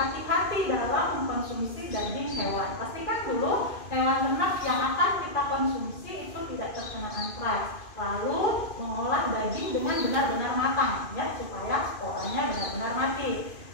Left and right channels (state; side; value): late; right; 2.5 ms